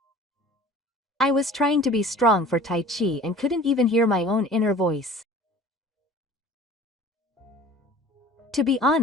I was trying to be strong for Taichi and couldn't even hear my own inner voice. To be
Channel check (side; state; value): both; normal; correlation 0.45